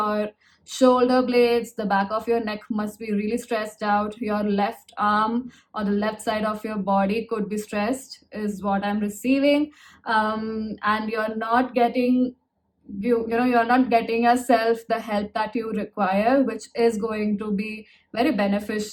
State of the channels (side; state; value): both; identical; correlation 1.00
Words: shoulder blades, the back of your neck must be really stressed out. Your left arm or the left side of your body could be stressed, is what I'm receiving. And you're not getting you're not getting yourself the help that you require, which is going to be very